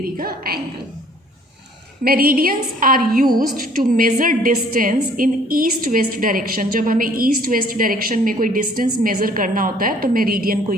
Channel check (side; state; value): both; normal; correlation 0.57